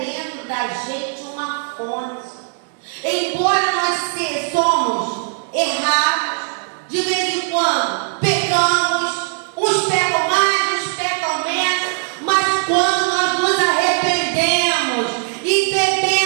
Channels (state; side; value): silent; left; digital silence